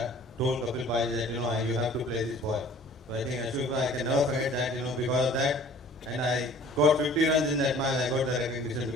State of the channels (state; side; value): normal; both; correlation 0.50